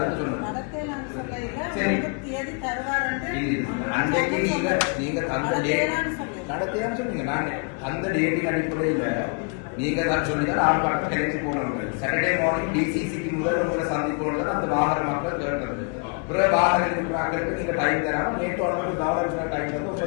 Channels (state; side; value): quieter; right; 36.0 dB